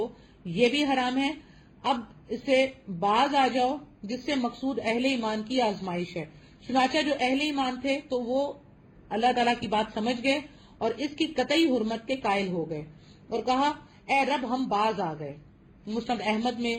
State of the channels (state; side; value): identical; both; correlation 1.00